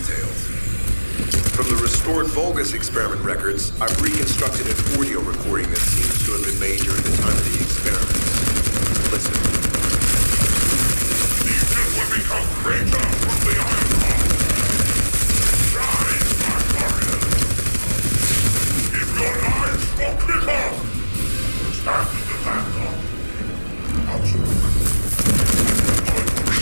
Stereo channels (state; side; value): inverted; both; correlation -1.00